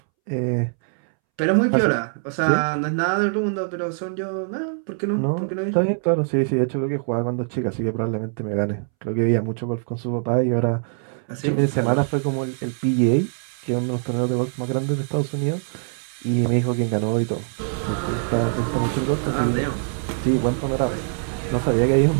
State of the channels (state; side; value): silent; left; 63 dB below the other